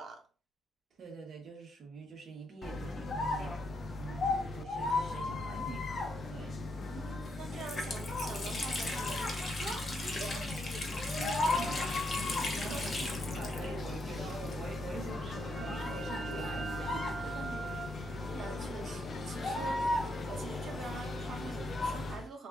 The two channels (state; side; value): normal; both; correlation 0.78